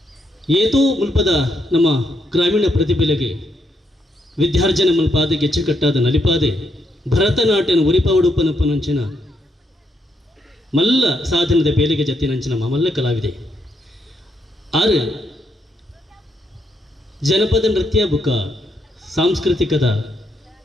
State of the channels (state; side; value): normal; both; correlation 0.77